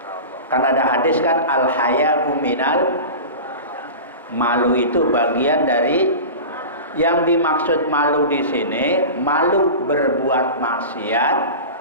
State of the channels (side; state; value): both; inverted; correlation -0.31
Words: Kan ada hadis kan, al-haya'u minal, malu itu bagian dari. Yang dimaksud malu di sini, malu berbuat maksiat,